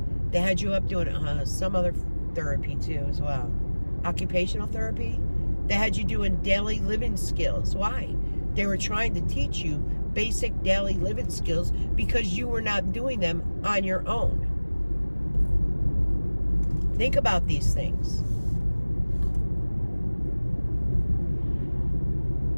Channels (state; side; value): inverted; both; correlation -1.00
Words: They had you up doing some other therapy too as well. Occupational therapy. They had you doing daily living skills. Why? They were trying to teach you basic daily living skills because you were not doing them on your own. Think about these things.